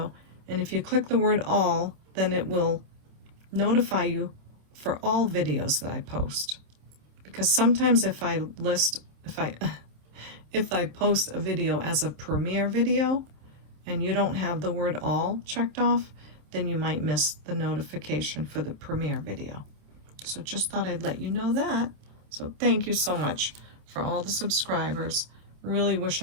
and if you click the word all, then it will notify you for all videos that I post. Because sometimes if I post a video as a premiere video and you don't have the word all checked off, then you might miss the notification for the premiere video. So just thought I'd let you know that. So thank you so much for all the subscribers. Really wish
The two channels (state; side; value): late; left; 27 ms